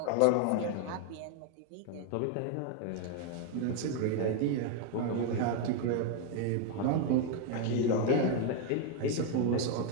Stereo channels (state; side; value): different; both; correlation 0.01